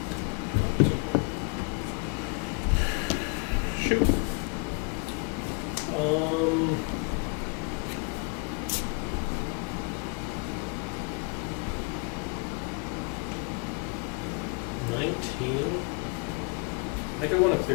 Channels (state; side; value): quieter; right; 32.2 dB